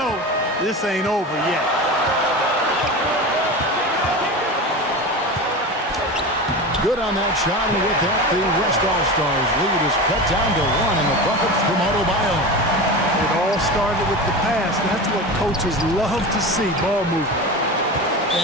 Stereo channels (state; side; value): normal; both; correlation 0.27